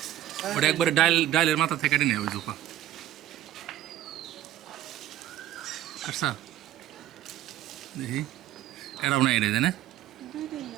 ওটা একবারে ডাইলের মাথা থেকে কেটে নেয় ওই জোপা পারছা দেখি এটাও না এটা জানে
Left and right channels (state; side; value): quieter; left; 12.8 dB